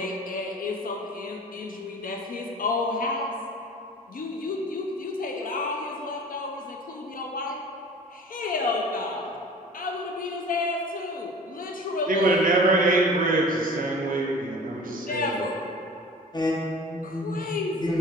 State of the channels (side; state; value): both; normal; correlation 0.42